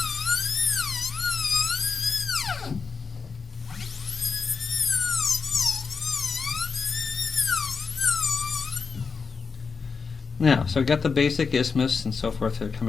Now, so I've got the basic isthmus and so forth that are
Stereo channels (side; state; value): right; quieter; 5.2 dB